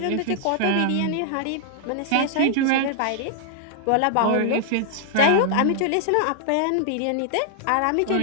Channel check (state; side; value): different; both; correlation -0.01